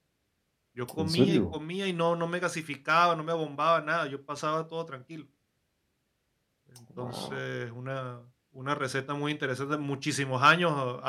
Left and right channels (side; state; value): both; identical; correlation 1.00